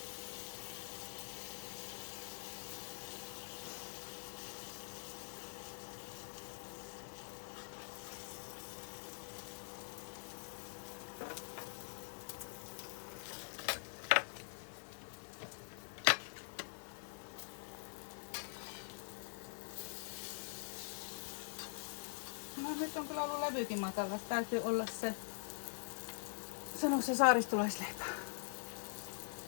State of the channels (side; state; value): right; silent; digital silence